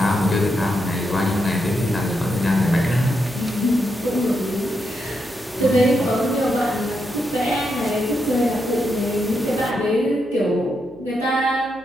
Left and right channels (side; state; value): right; noise; hum, 28 dB below the sound